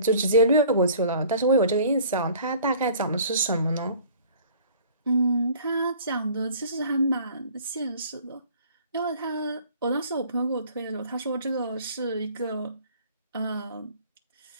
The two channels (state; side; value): inverted; both; correlation -0.50